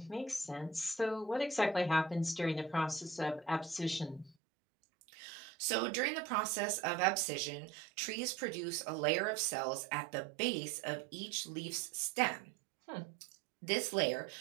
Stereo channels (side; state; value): left; drops out; at 4.4 s